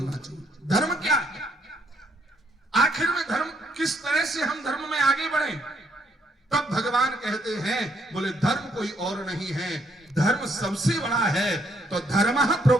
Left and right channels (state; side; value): normal; both; correlation 0.71